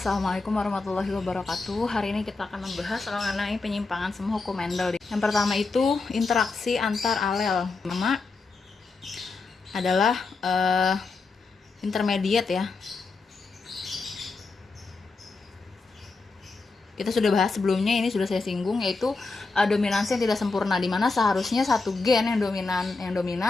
warahmatullahi wabarakatuh. Hari ini kita akan membahas mengenai penyimpangan semua hukum Mendel. Yang pertama itu interaksi antar alel. Pertama adalah intermediate ya. Kita sudah bahas sebelumnya, ini sudah saya singgung, yaitu dominansi yang tidak sempurna, di mana seharusnya satu gen yang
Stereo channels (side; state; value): right; quieter; 3.9 dB